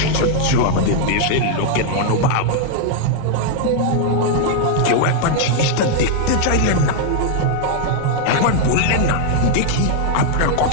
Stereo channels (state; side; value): different; both; correlation 0.00